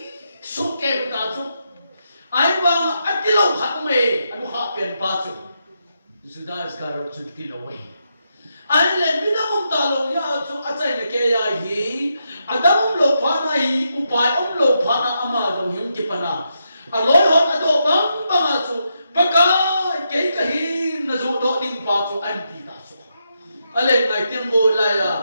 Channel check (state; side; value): inverted; both; correlation -0.83